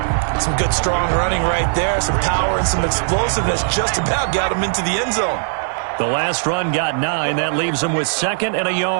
Some good, strong running right there. Some power and some explosiveness just about got him into the end zone. The last run got 9. That leaves him with 2nd and a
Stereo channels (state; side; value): silent; left; digital silence